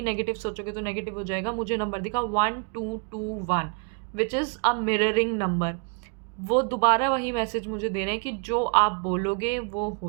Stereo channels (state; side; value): quieter; left; 36.9 dB